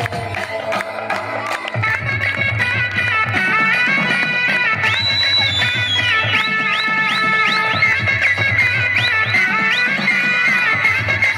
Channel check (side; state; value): both; identical; correlation 1.00